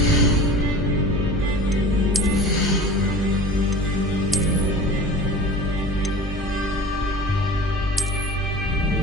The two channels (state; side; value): normal; both; correlation 0.38